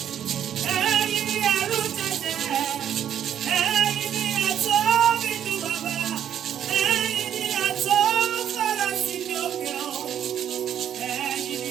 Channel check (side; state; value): left; quieter; 9.8 dB